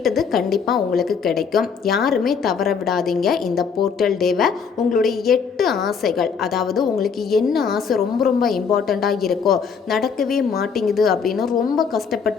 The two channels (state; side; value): quieter; right; 6.1 dB